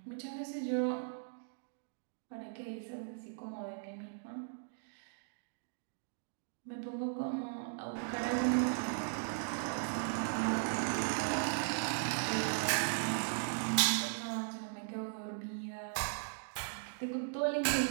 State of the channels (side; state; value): left; silent; digital silence